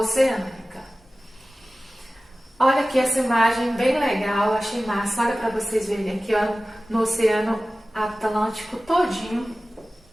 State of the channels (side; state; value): both; normal; correlation 0.97